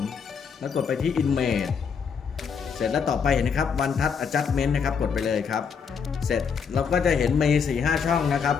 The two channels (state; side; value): quieter; right; 6.3 dB